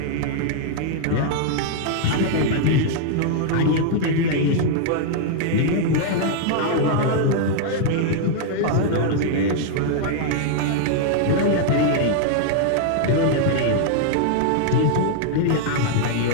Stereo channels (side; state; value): both; different; correlation -0.01